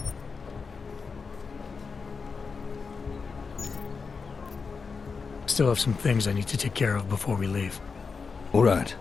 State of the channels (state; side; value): quieter; right; 5.0 dB